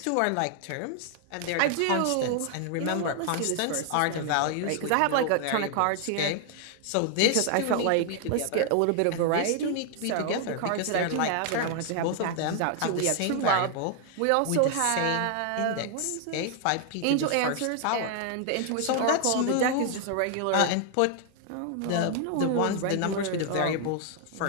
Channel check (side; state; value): both; different; correlation 0.00